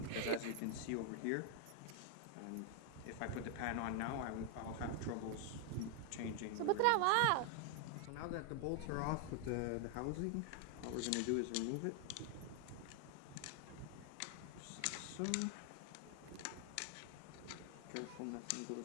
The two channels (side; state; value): both; different; correlation 0.00